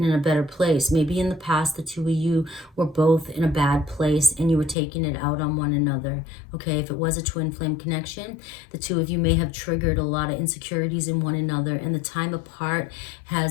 in a better place. Maybe in the past, the two of you were both in a bad place and you were taking it out on one another. Okay, if it was a twin flame connection, the two of you may have triggered a lot of insecurities in one another, and the time apart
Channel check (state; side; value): drops out; right; at 4.8 s